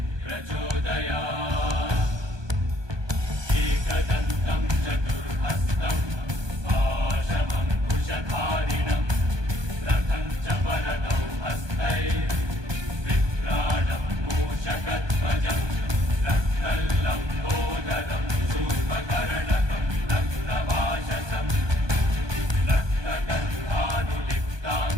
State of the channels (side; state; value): left; late; 1.2 ms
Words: प्रचोदयात्। एकदन्तं चतुर्हस्तं पाशमङ्कुशधारिणं रथं च वरदौ हस्तैर्विभ्राणं मूषकध्वजं रक्तल्लम्बोदरं शूर्पकर्णकं रक्तवाशसं